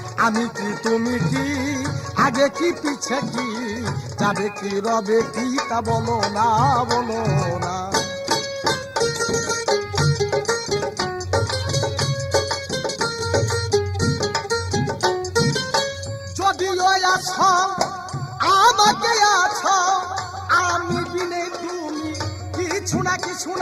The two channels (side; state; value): both; identical; correlation 1.00